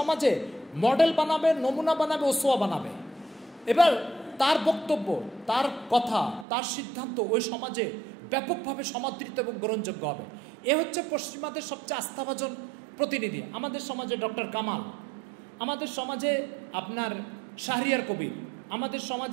মডেল বানাবে, নমুনা বানাবে, ওসোয়া বানাবে। এবার তার বক্তব্য, তার কথা, তার সিদ্ধান্ত ওই সমাজে ব্যাপকভাবে সমাদৃত এবং গ্রহণযোগ্য হবে। এ হচ্ছে পশ্চিমাদের সবচেয়ে আস্থাভাজন প্রতিনিধি। আমাদের সমাজে ডক্টর কামাল, আমাদের সমাজে আপনার শাহরিয়ার কবির, আমাদের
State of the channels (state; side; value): drops out; left; at 6.5 s